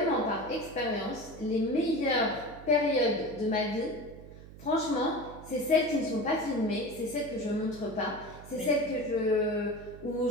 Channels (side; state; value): right; noise; hum, 17 dB below the sound